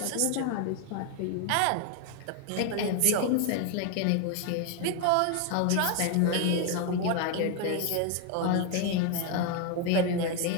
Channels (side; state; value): both; different; correlation 0.01